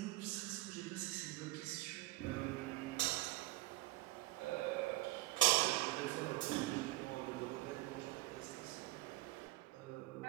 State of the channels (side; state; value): left; quieter; 19.0 dB